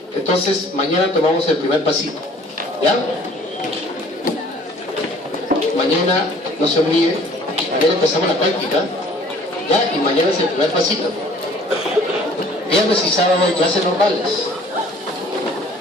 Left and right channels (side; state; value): both; normal; correlation 0.53